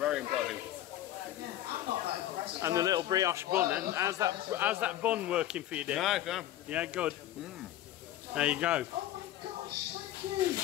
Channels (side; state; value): right; quieter; 13.3 dB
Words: impressive. I'm not that impressed. And the little brioche bun. And how's that bun working for you, Dick? Nice, yeah. Yeah, good. There you go. Oh my gosh, thank you.